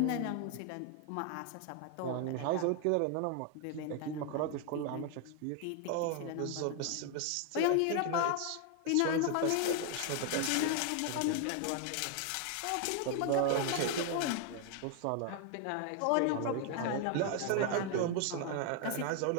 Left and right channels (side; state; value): both; different; correlation 0.00